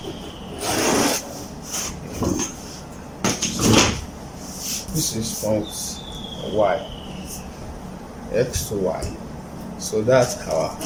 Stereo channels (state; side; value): identical; both; correlation 1.00